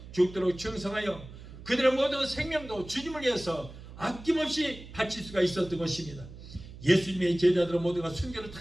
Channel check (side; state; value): right; noise; hum, 15 dB below the sound